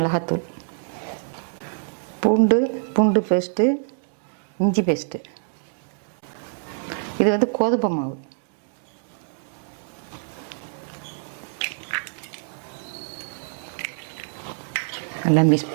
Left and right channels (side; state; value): left; silent; digital silence